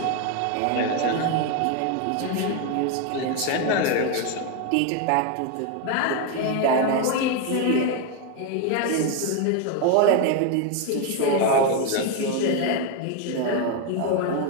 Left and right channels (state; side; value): different; both; correlation 0.01